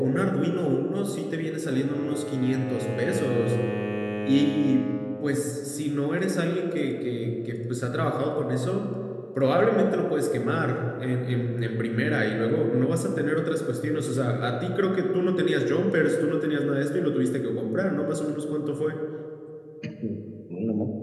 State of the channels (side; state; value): both; identical; correlation 1.00